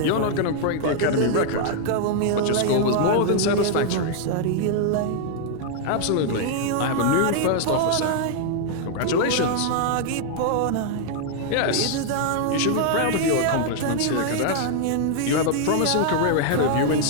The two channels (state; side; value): different; both; correlation 0.00